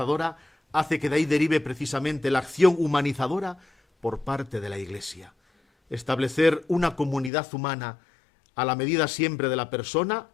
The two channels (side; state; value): right; drops out; at 7.3 s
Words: hace que de ahí derive precisamente la acción humanizadora por parte de la Iglesia. Establecer una comunidad humana a la medida siempre de la persona